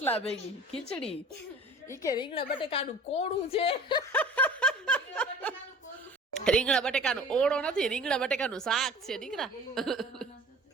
ભેગી ખીચડી ઈ કે રીંગણા બટેકાનું કોળું છે રીંગણા બટેકાનો ઓળો નથી રીંગણા બટેકાનું શાક છે દીકરા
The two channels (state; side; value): normal; both; correlation 0.43